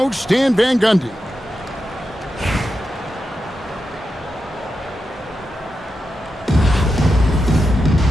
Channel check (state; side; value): normal; both; correlation 0.89